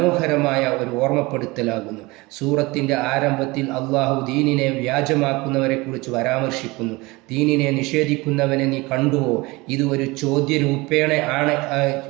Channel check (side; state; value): left; quieter; 23.0 dB